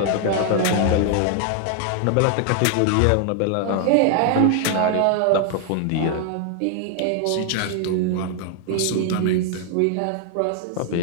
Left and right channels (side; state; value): both; different; correlation 0.00